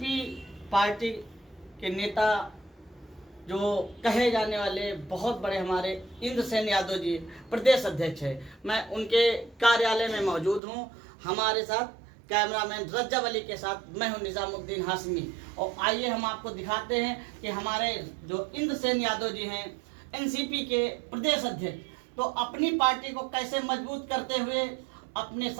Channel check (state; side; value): drops out; left; at 10.6 s